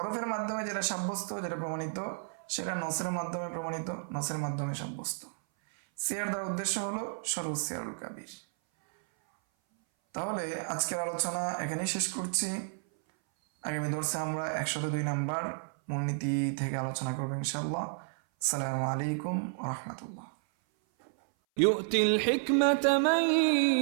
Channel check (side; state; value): left; silent; 57 dB below the other